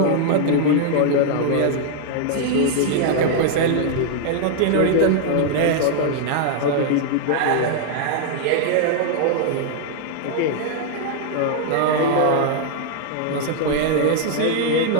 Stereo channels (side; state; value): both; different; correlation -0.01